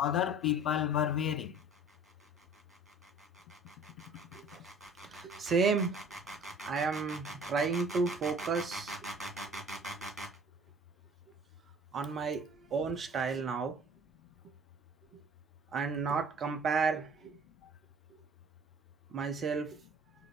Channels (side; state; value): both; normal; correlation 0.48